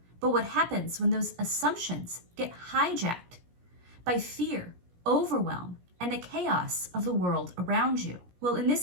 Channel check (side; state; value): left; late; 17 ms